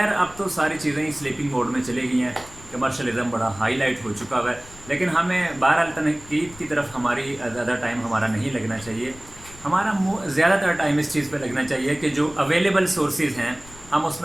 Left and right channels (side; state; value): left; noise; rumble, 21 dB below the sound